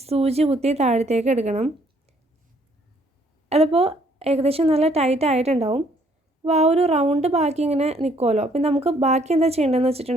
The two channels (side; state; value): both; normal; correlation 0.65